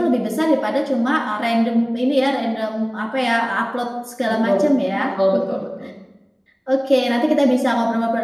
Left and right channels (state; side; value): identical; both; correlation 1.00